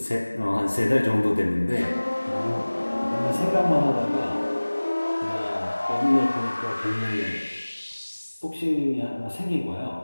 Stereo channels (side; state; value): both; inverted; correlation -1.00